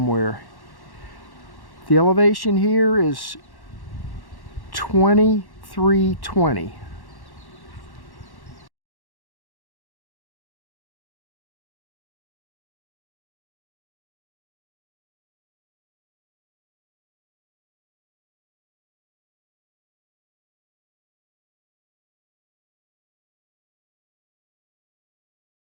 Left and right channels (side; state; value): right; late; 1.1 ms